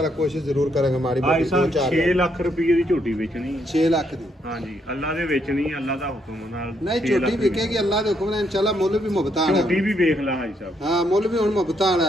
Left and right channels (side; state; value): both; normal; correlation 0.75